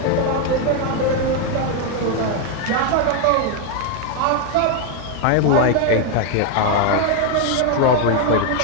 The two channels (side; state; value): both; different; correlation 0.01